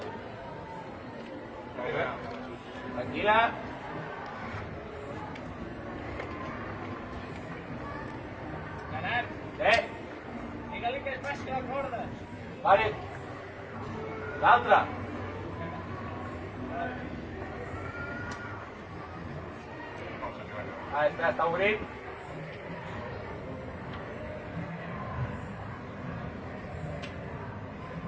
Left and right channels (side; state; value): both; identical; correlation 1.00